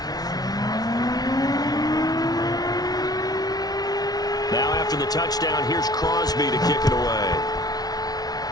Now after the touchdown. Here's Crosby to kick it away.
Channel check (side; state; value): right; late; 0.19 ms